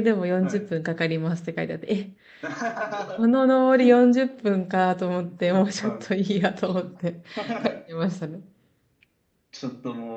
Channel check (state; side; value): identical; both; correlation 1.00